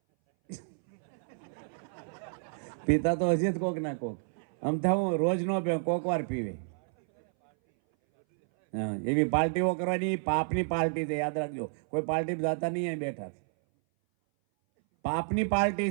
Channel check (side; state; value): left; silent; 58 dB below the other